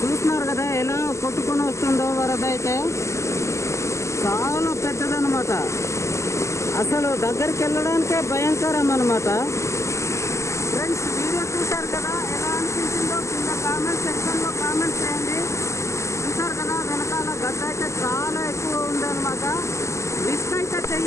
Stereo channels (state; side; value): late; right; 0.14 ms